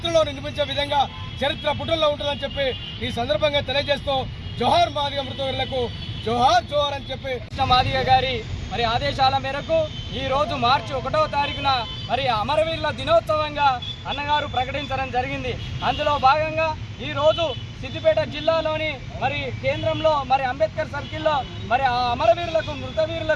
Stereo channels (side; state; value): both; identical; correlation 1.00